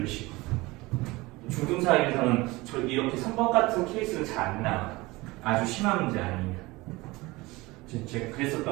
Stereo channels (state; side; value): quieter; left; 21.7 dB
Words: 식으로. 중등수학에서는 이렇게 3번 같은 케이스는 잘 안 나와. 아주 심한 문제 아니에요. 제가